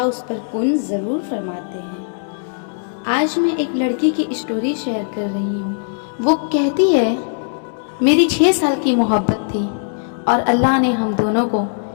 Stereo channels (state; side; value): silent; right; digital silence